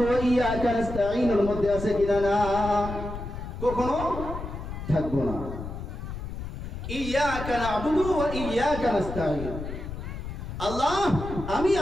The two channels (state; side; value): noise; left; rumble, 8 dB below the sound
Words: ওয়া ইয়্যাকা নাস্তাঈনের মধ্যে আছে কিনা? না, কখনো থাকবো না। ইয়্যাকা না'বুদু ওয়া ইয়্যাকা নাস্তাঈন, আল্লাহ